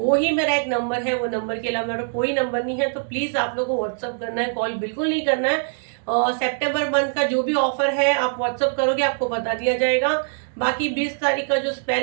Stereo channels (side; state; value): left; silent; digital silence